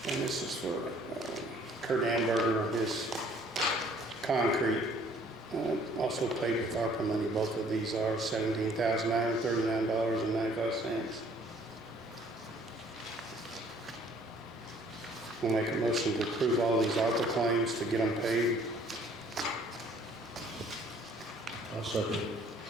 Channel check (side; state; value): both; normal; correlation 0.58